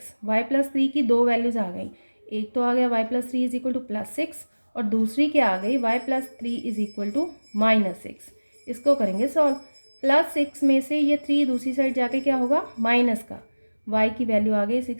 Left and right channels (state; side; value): inverted; both; correlation -1.00